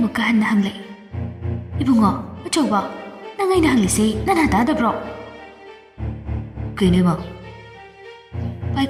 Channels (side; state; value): both; identical; correlation 1.00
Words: ꯍꯟꯅ ꯍꯪꯂꯛꯏ ꯏꯕꯨꯡꯉꯣ ꯑꯆꯧꯕ ꯅꯪ ꯑꯩꯅ ꯍꯪꯂꯤꯁꯤ ꯅꯅꯥ ꯇꯥꯗꯕ꯭ꯔꯣ ꯀꯩꯅꯣ ꯏꯃꯥ